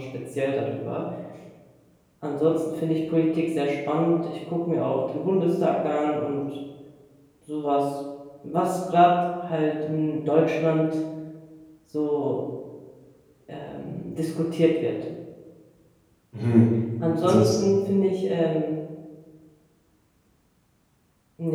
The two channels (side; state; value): both; identical; correlation 1.00